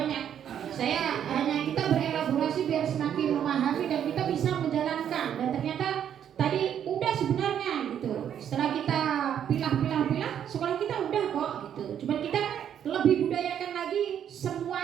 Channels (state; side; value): quieter; left; 9.3 dB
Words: Saya hanya kita berelaborasi biar semakin memahami dan kita bisa menjalankan. Dan ternyata tadi udah sebenarnya gitu. Setelah kita pilah, sekolah kita udah kok gitu. Cuma kita lebih budayakan lagi